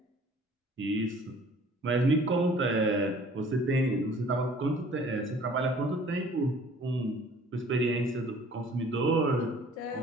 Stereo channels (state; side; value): normal; both; correlation 0.52